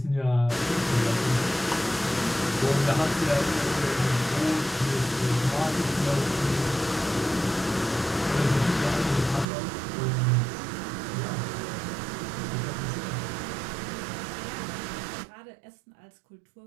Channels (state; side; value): drops out; left; at 9.5 s